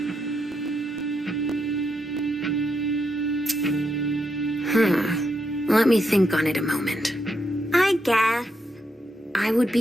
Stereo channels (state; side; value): normal; both; correlation 0.82